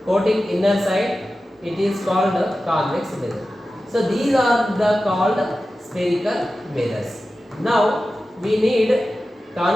coating inner side, it is called convex mirror. So these are the called spherical mirrors. Now we need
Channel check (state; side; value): normal; both; correlation 0.94